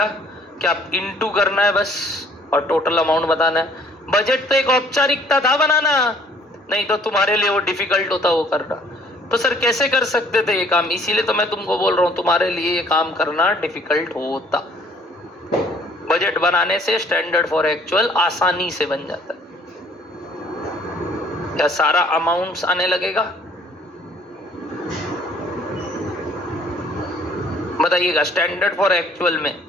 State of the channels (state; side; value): normal; both; correlation 0.58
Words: क्या इनटू करना है बस और टोटल अमाउंट बताना है। बजट तो एक औपचारिकता था बनाना, नहीं तो तुम्हारे लिए वो डिफिकल्ट होता वो करना। तो सर कैसे कर सकते थे ये काम? इसीलिए तो मैं तुमको बोल रहा हूँ तुम्हारे लिए ये काम करना डिफिकल्ट होता। बजट बनाने से स्टैंडर्ड फॉर एक्चुअल आसानी से बन जाता है। क्या सारा अमाउंट्स आने लगेगा? बताइएगा। स्टैंडर्ड फॉर एक्चुअल में